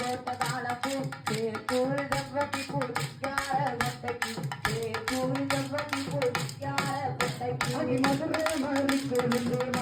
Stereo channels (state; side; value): identical; both; correlation 1.00